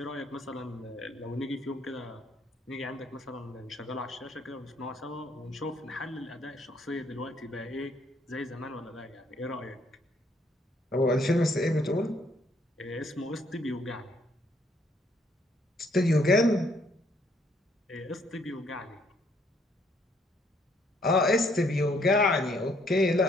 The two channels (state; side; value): normal; both; correlation 0.68